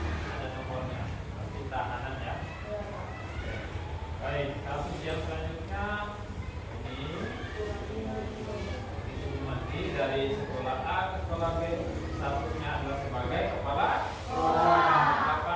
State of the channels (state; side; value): identical; both; correlation 1.00